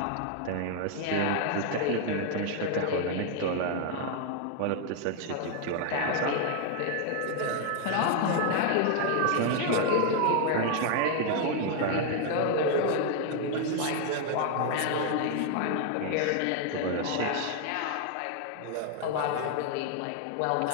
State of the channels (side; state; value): both; different; correlation 0.00